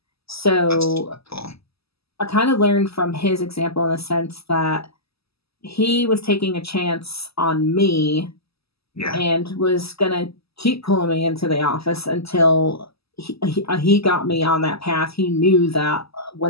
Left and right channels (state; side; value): late; right; 0.77 ms